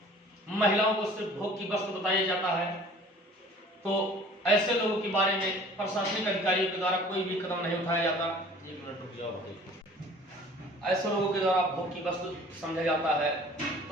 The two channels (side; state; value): both; normal; correlation 0.48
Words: महिलाओं को सिर्फ भोग की वस्तु बताया जाता है। तो ऐसे लोगों के बारे में प्रशासनिक अधिकारियों के द्वारा कोई भी कदम नहीं उठाया जाता। एक मिनट रुक जाओ। ऐसे लोगों के द्वारा भोग की वस्तु समझा जाता है